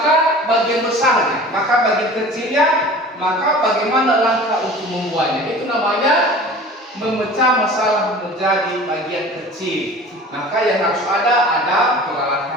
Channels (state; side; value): normal; both; correlation 0.41